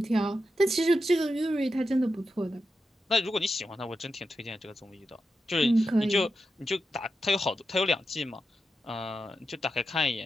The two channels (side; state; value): both; normal; correlation 0.88